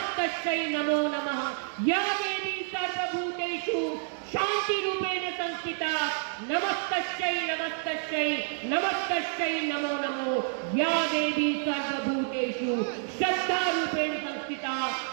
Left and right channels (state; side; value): silent; left; 59 dB below the other